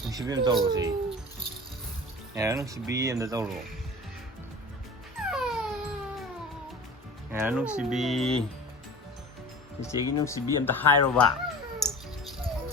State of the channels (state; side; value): normal; both; correlation 0.37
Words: Nung sibi daw ro si. Ngaira nung sibi daw ro. Ngaira nung sibi. Sige nung sibi ta hai ro ba.